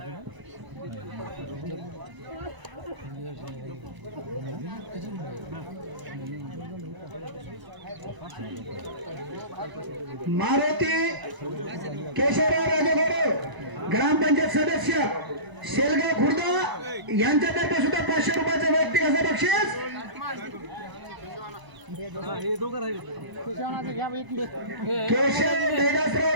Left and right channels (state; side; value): late; left; 1.0 ms